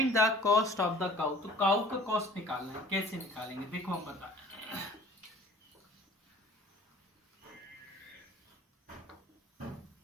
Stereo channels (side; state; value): both; normal; correlation 0.48